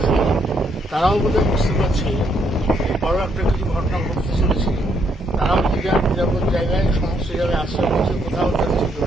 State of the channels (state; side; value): normal; both; correlation 0.73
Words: তারাও বোধহয় বুঝতে পারছে বড় একটা কিছু ঘটনা ঘটতে চলেছে। তারাও নিরাপদ জায়গায়, সমস্ত জায়গায় আশ্রয় করছে, কোথাও যাচ্ছে